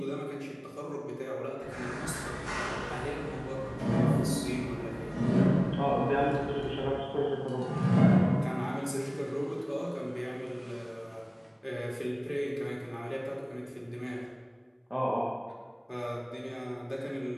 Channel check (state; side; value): identical; both; correlation 1.00